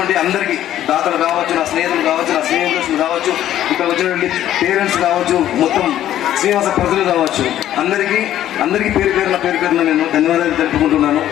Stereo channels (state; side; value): quieter; right; 12.1 dB